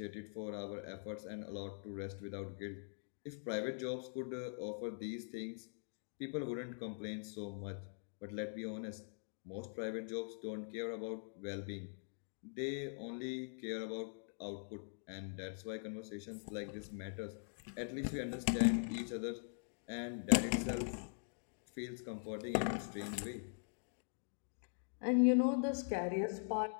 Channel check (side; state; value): right; silent; digital silence